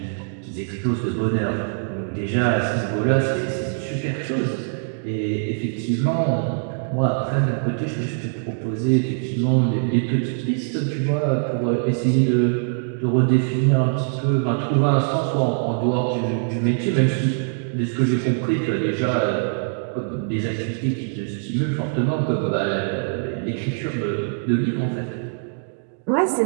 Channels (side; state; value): left; silent; digital silence